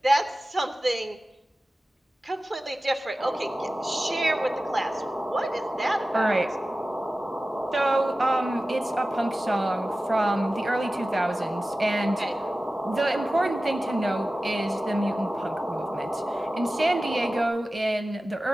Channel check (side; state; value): both; normal; correlation 0.95